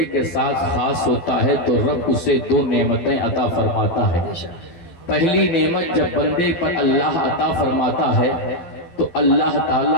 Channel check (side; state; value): right; late; 12 ms